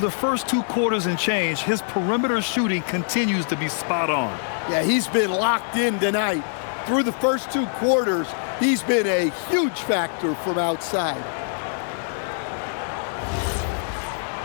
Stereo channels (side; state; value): right; silent; 63 dB below the other